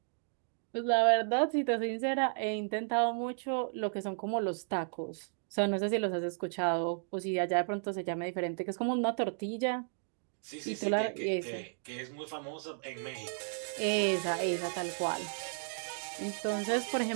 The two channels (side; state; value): left; silent; digital silence